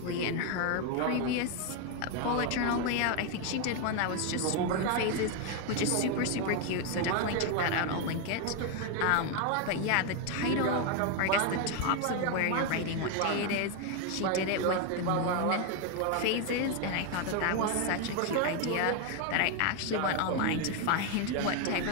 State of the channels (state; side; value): different; both; correlation 0.01